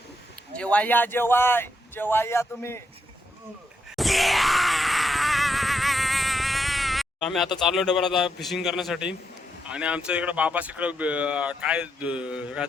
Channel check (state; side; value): normal; both; correlation 0.80